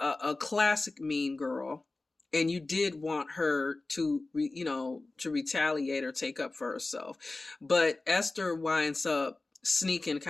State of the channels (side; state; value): right; quieter; 3.2 dB